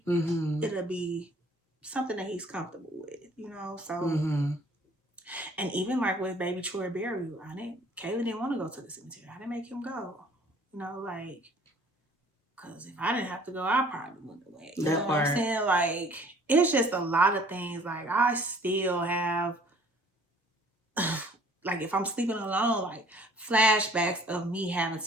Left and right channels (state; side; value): normal; both; correlation 0.55